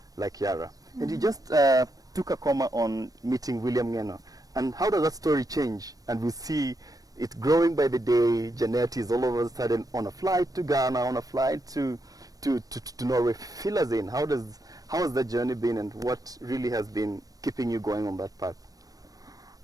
like Yara. And you just took a comma on meeting William Ngeno. And how does that story change? And we see it growing by the day. Janet is all of a sudden on a flight to Ghana, on a flight to Norway. Fill us in. How has that journey been, and what really has been keeping you going on that path?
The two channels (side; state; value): left; late; 0.18 ms